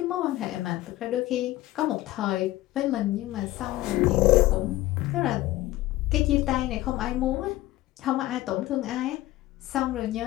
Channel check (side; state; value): right; quieter; 16.5 dB